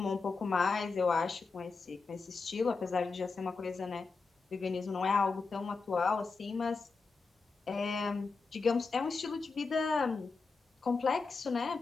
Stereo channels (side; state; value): right; quieter; 4.4 dB